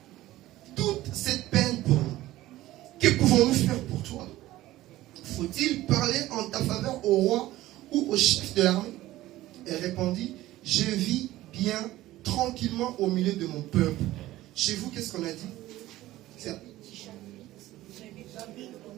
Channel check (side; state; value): left; quieter; 16.0 dB